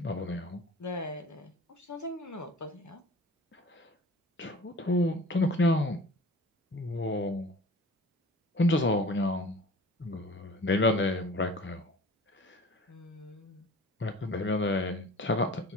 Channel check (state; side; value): normal; both; correlation 0.44